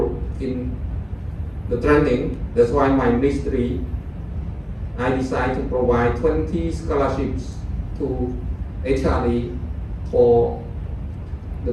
in the training. That's why my ministry, I decided to provide 20 scholarships to HRD for the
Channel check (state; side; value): identical; both; correlation 1.00